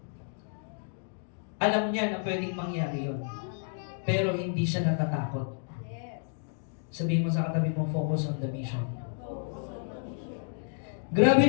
Alam niya na pwedeng mangyari yun. Pero hindi siya natatakot. Yes. Sabihin mo sa katabi mo, focus on the mission. Grabe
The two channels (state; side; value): silent; right; digital silence